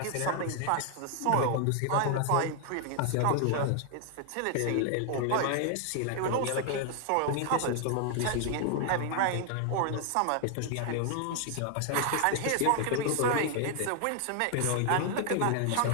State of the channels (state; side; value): different; both; correlation 0.00